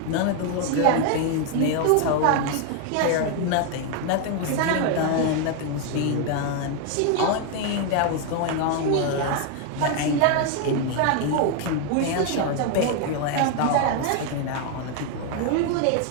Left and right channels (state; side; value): different; both; correlation 0.01